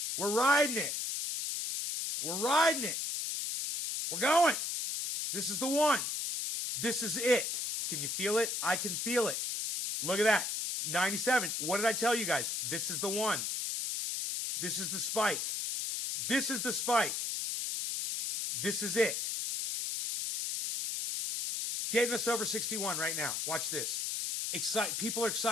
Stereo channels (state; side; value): noise; left; hiss, 1 dB below the sound